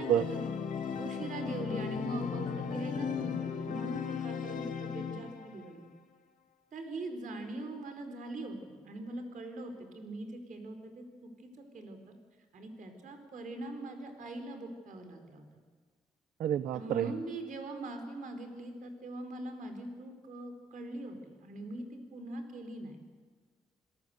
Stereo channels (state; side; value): normal; both; correlation 0.58